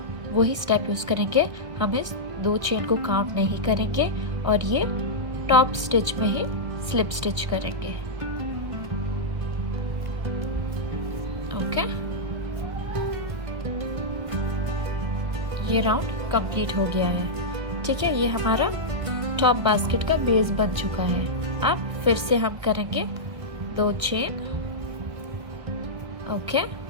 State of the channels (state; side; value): late; left; 1.6 ms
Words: वही स्टेप यूज करेंगे। हम इस 2 चेन को काउंट नहीं करेंगे और ये टॉप स्टिच में ही स्लिप स्टिच करेंगे। ओके, ये राउंड कंप्लीट हो गया है। ठीक है, ये हमारा टॉप बास्केट का बेस बन चुका है। अब फिर से हम करेंगे 2 चेन, ओके,